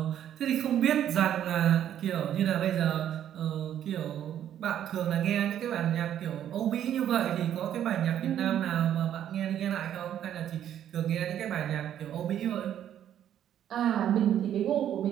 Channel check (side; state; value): left; quieter; 10.5 dB